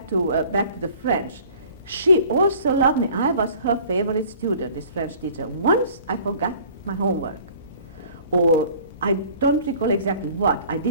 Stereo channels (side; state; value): both; inverted; correlation -0.50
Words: to the French. She also loved me. I was her favorite student, this French teacher. Once I forgot my homework, or I don't recall exactly what. I